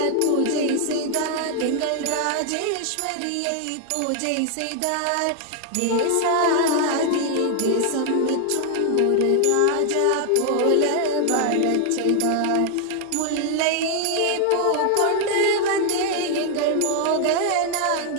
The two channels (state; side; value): different; both; correlation 0.00